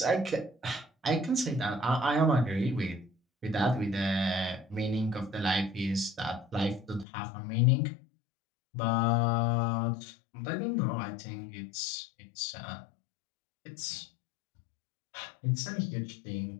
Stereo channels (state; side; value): drops out; right; at 7.1 s